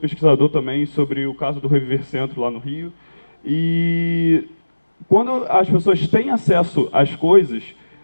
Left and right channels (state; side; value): inverted; both; correlation -1.00